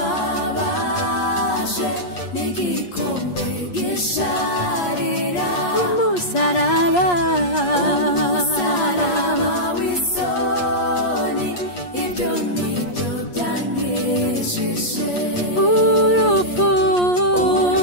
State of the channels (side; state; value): right; late; 8.4 ms